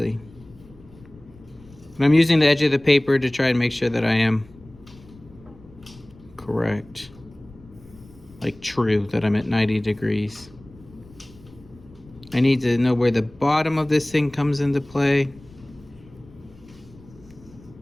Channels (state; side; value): noise; left; rumble, 23 dB below the sound